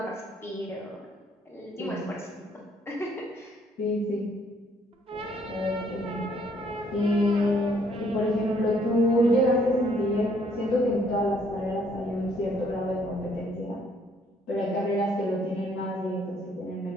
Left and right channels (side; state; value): both; normal; correlation 0.65